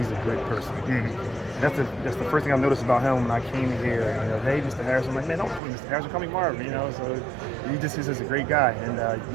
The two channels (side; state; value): left; drops out; at 5.6 s